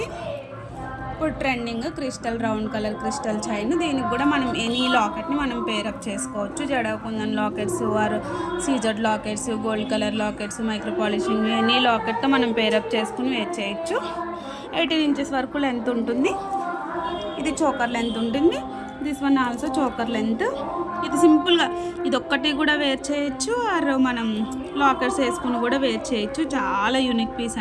ఇప్పుడు trending crystal round colour crystal chain. దీనికి కూడా మనం ఎనీ లాకెట్ని మనం పేరప్ చేసుకోవచ్చు. జడకుందన్ lockets or CZ lockets, gold colour lockets, micro polishing any లాకెట్తో మనం పేరప్ చేసుకుని వేర్ చేయొచ్చు. 18 ఇంచెస్ వరకు లెంత్ ఉంటుంది. ఇది చోకర్ లెంత్ ఉంటుంది. This one also choker length. ఇది సింపుల్గా ఇది ఒక్కటి కూడా వేర్ చేయొచ్చు ఆర్ మనం లాకెట్స్ వేసుకుని కూడా వేర్ చేయొచ్చు. చాలా యూనిక్ పీస్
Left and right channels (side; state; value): both; identical; correlation 1.00